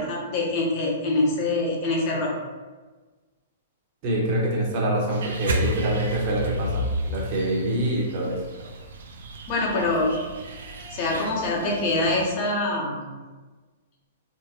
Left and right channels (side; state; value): both; inverted; correlation -0.31